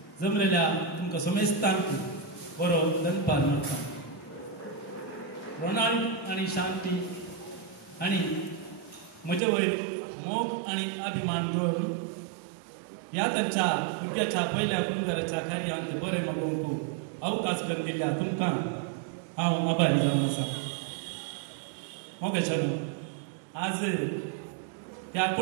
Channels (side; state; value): left; drops out; at 9.4 s